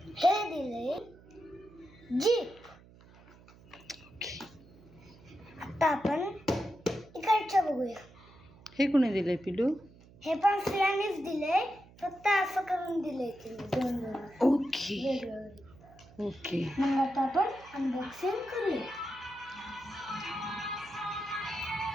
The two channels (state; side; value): noise; right; hum, 23 dB below the sound